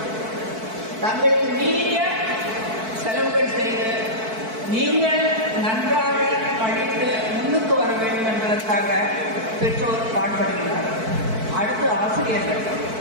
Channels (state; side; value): late; left; 4.5 ms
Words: தங்களுக்கு மீறிய செலவுகள் செய்து நீங்கள் நன்றாக படித்து முன்னுக்கு வர வேண்டும் என்பதற்காக பெற்றோர் பாடுபடுகிறார்கள். அடுத்து ஆசிரியர்கள்